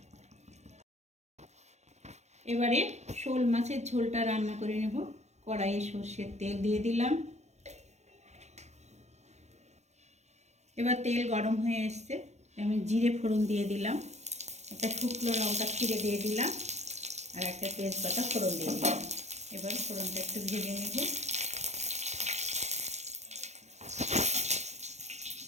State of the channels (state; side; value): late; left; 0.33 ms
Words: এবারে শোল মাছের ঝোলটা রান্না করে নেব। কড়াইয়ে সর্ষের তেল দিয়ে দিলাম। এবার তেল গরম হয়ে এসছে, আমি জিরে ফোড়ন দিয়ে দিলাম, একটা শুকনো লঙ্কা ছিঁড়ে দিয়ে দিলাম, আর একটা তেজপাতা ফোড়ন দিয়ে দিলাম। এবার ফোড়নটা একটু ভেজে নেব।